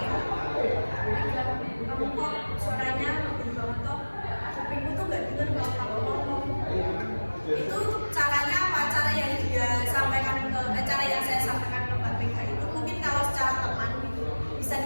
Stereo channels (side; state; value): both; inverted; correlation -1.00